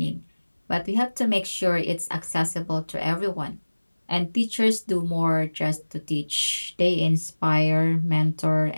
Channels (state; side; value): inverted; both; correlation -1.00